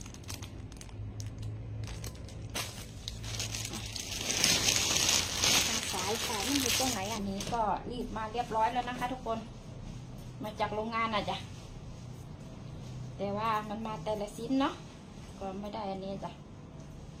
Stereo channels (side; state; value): both; identical; correlation 1.00